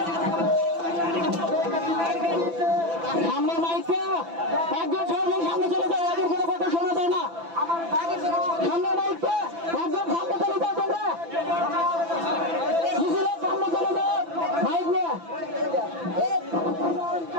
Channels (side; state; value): left; late; 5.9 ms